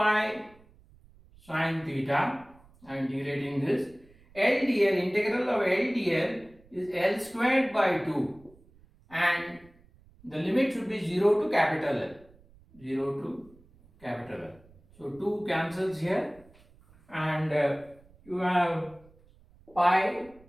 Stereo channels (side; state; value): right; noise; rumble, 27 dB below the sound